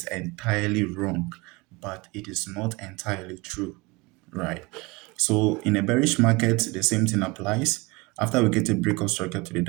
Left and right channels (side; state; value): left; quieter; 24.8 dB